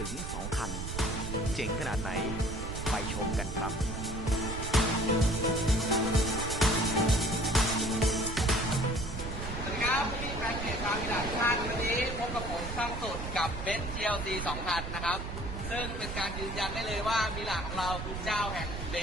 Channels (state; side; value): noise; right; rumble, 6 dB below the sound